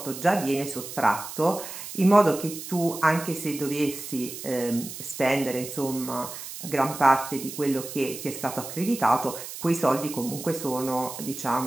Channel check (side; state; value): right; noise; hiss, 10 dB below the sound